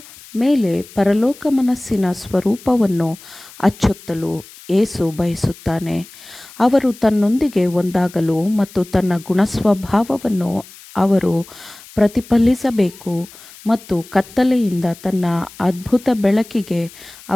ಮೇಲೆ ಪರಲೋಕ ಮನಸ್ಸಿನ ಸ್ವರೂಪವನ್ನು ಅಚ್ಚೊತ್ತಲು ಯೇಸು ಬಯಸುತ್ತಾನೆ. ಅವರು ತನ್ನೊಂದಿಗೆ ಒಂದಾಗಲು ಮತ್ತು ತನ್ನ ಗುಣಸ್ವಭಾವವನ್ನು ಅವರು ಪ್ರತಿಫಲಿಸಬೇಕು ಮತ್ತು ಕತ್ತಲೆಯಿಂದ ತನ್ನ ಅದ್ಭುತ ಬೆಳಕಿಗೆ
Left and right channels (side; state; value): left; noise; hiss, 20 dB below the sound